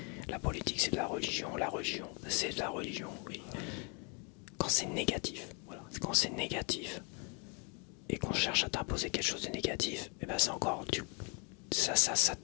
La politique, c'est de la religion c'est de la religion, oui. Quand c'est négatif, voilà. Quand c'est négatif, et qu'on cherche à t'imposer quelque chose de négatif, et ben c'est encore... ça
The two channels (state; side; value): quieter; right; 33.4 dB